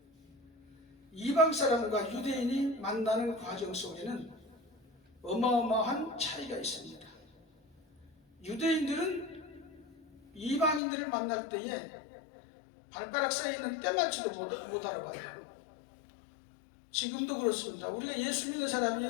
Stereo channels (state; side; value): drops out; right; at 10.8 s